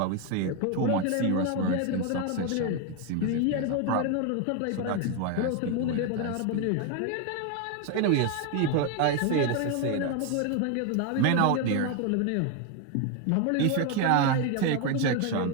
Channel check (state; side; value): different; both; correlation 0.01